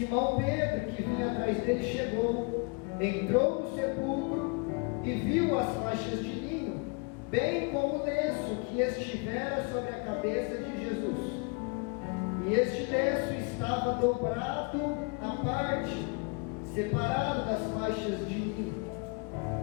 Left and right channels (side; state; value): right; quieter; 32.3 dB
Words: Pedro, que vinha atrás dele, chegou, entrou no sepulcro e viu as faixas de linho, bem como o lenço que estivera sobre a cabeça de Jesus. E este lenço estava dobrado à parte, separado das faixas de linho.